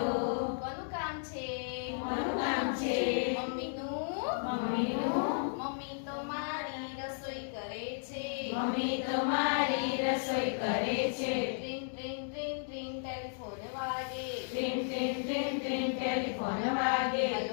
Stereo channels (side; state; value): right; silent; digital silence